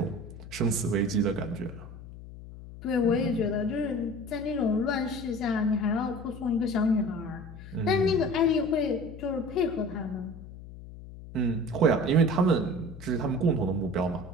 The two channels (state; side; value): noise; left; hum, 15 dB below the sound